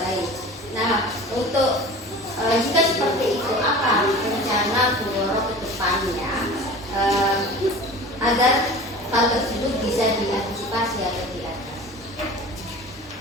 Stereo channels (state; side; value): normal; both; correlation 0.39